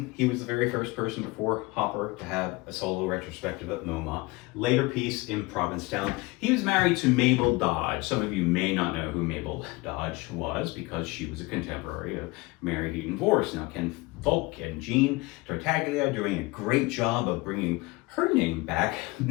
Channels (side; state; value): right; quieter; 23.6 dB